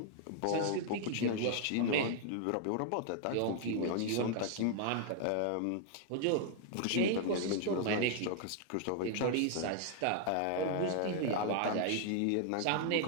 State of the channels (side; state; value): both; different; correlation 0.00